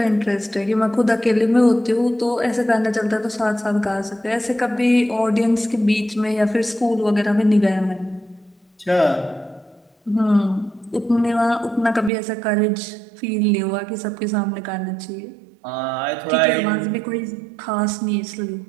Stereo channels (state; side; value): drops out; left; at 12.1 s